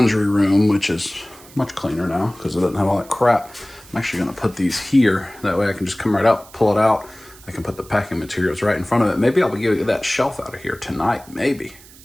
room, which is much cleaner now because it doesn't have all that crap. I'm actually going to put these here. That way I can just come right out, pull it out. I can put the packing materials right in front of it. Maybe I'll be getting that shelf out of here tonight, maybe.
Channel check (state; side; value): noise; right; hiss, 22 dB below the sound